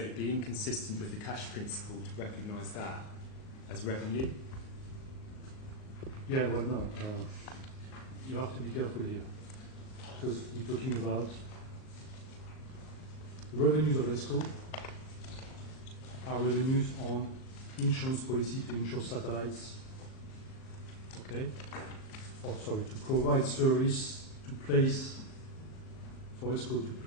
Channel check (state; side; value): late; right; 38 ms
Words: would be inconsistent with the cash principle to recognise that as revenue. Yeah, well, no. You have to be careful here, because we're talking about the revenues of ESCO are revenues on insurance policy to insure satellites, okay? Or sorry, to provide service to place, for ESCO to